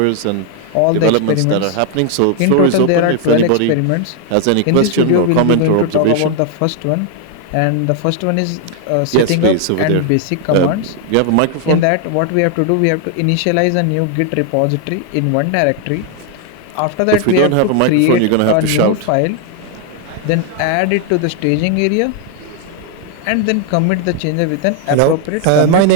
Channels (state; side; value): different; both; correlation 0.00